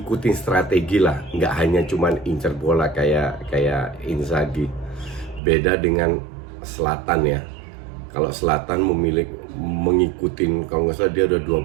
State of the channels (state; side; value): drops out; left; at 5.4 s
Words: strategi lah, nggak hanya cuman incer bola kayak Inzaghi. Beda dengan Zlatan ya. Kalau Zlatan mengikuti, kalau nggak salah dia udah